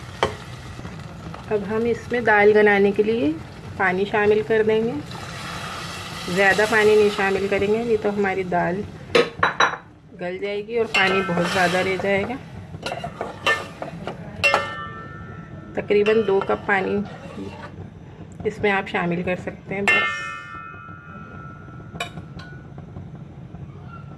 अब हम इसमें दाल बनाने के लिए पानी शामिल कर देंगे। ज़्यादा पानी नहीं शामिल करेंगे, नहीं तो हमारी दाल गल जाएगी और पानी बहुत ज़्यादा रह जाएगा। तकरीबन 2 कप पानी इसमें आप शामिल कर सकते हैं बस।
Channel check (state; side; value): identical; both; correlation 1.00